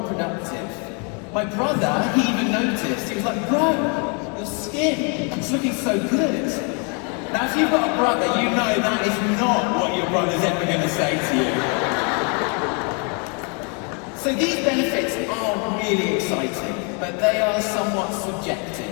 productive. My brother, he even noticed. He was like, bro, your skin is looking so good. Now, if you've got a brother, you know that is not what your brother's ever going to say to you. So these benefits are really exciting, but they are somewhat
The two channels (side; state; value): right; quieter; 35.8 dB